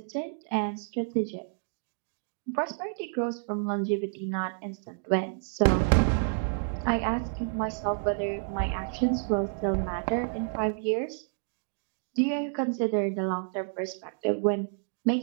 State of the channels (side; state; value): left; silent; digital silence